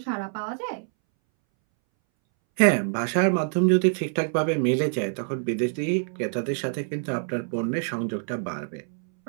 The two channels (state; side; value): silent; left; 61 dB below the other